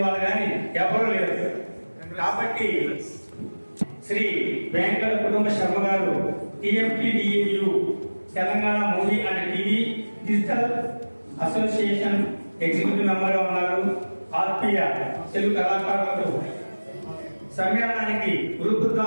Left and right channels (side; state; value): both; inverted; correlation -1.00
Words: వాళ్ళు కానీ ఎవరు లేరు. కాబట్టి శ్రీ వెంకట కుటుంబ శర్మ గారు TFTDAU Telangana movie and TV digital association executive member గా ఉన్నారు. ఆత్మీయ తెలుగు కళాకారులకు సమ్మేళనానికి గ్రూప్